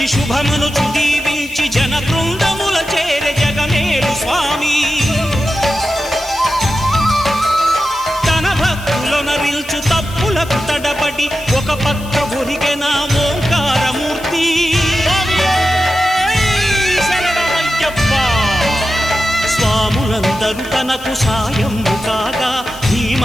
శుభమనుచు దీవించి జన బృందముల చేరే జగమేలు స్వామి తన భక్తులొనరిల్చు తప్పులకు తడబడి ఒక పక్క ఒరిగెన ఓంకారమూర్తి స్వాములందరూ తనకు సాయము కాగా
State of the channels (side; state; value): left; noise; hiss, 18 dB below the sound